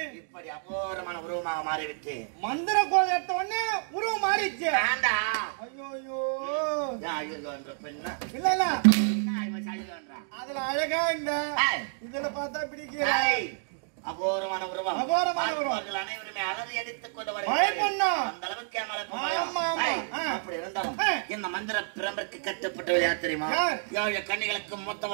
இப்படி அபூர்வமான உருவமாக மாறிவிட்டு மந்திர கோல் எடுத்த உடனே உருவம் மாறிச்சு. இல்ல இல்ல அதுல அழகா இந்த இதுல பார்த்தா பிடிக்கிற அபூர்வமான உருவம். அபூர்வமான உருவம். அனைவருமே அலறி அடித்துக் கொண்டு அந்த அளவுக்கு அப்படி இருந்தாலும் இந்த மந்திர பிரம்பிற்கு கட்டப்பட்டவள் யார் தெரியுமா? 7 கன்னிகளுக்கு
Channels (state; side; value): silent; left; digital silence